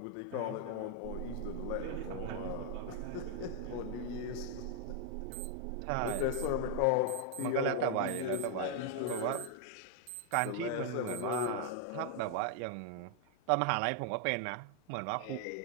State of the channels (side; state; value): both; different; correlation 0.00